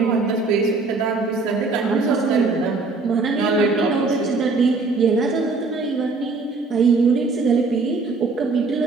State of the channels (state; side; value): quieter; left; 3.9 dB